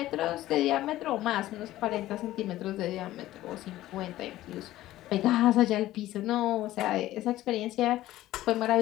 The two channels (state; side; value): quieter; right; 15.2 dB